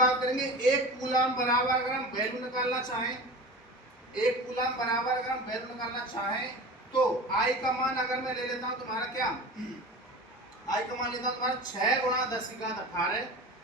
करेंगे एक कूलाम बराबर अगर हम वैल्यू निकालना चाहें, एक कूलाम बराबर अगर हम वैल्यू निकालना चाहें तो I का मान अगर मैं ले लेता हूं तुम्हारा क्या, I का मान लेता हूं तुम्हारा 6 गुणा 10 की घात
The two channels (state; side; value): normal; both; correlation 0.33